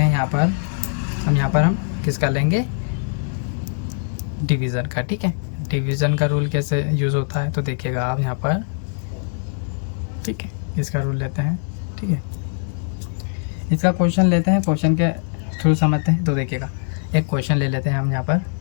हैं यहाँ पर, हम किसका लेंगे, डिवीज़न का, ठीक है। डिवीज़न का रूल कैसे यूज़ होता है तो देखिएगा आप यहाँ पर, ठीक है। इसका रूल लेते हैं, ठीक है। इसका क्वेश्चन लेते हैं, क्वेश्चन के थ्रू समझते हैं। तो देखिएगा एक क्वेश्चन ले लेते हैं हम यहाँ पर,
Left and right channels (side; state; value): right; silent; digital silence